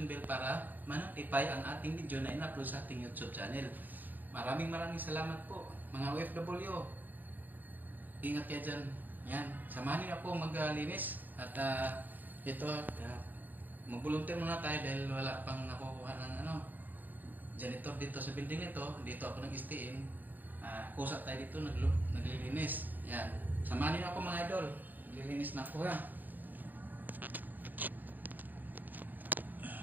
bell para ma-notify ang ating video na in-upload sa ating YouTube channel. Maraming salamat po mga OFW. Ingat kayo dyan. Yan. Samahan niyo ako maglinis. At ito, mag-volunteer muna tayo dahil wala pang nakukuha ng janitor dito sa building ito. Dito ako nag-stayin. Kusat tayo dito, naglilinis. Yan. Samahan niyo ako mga idol. Naglilinis na ako ha.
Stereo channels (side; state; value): left; late; 0.087 ms